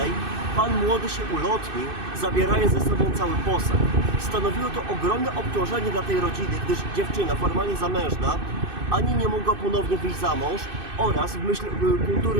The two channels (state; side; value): late; left; 2.6 ms